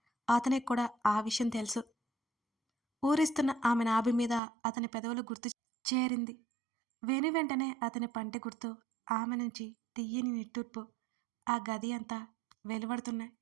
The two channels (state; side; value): drops out; left; at 4.4 s